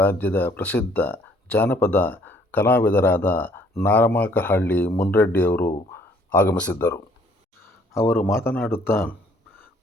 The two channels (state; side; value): normal; both; correlation 0.61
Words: ಪ್ರಸಿದ್ಧ ಜಾನಪದ ಕಲಾವಿದರಾದ ನಾರಮಾಕಹಳ್ಳಿ ಮುನ್ರೆಡ್ಡಿಯವರು ಆಗಮಿಸಿದ್ದರು. ಅವರು ಮಾತನಾಡುತ್ತಾ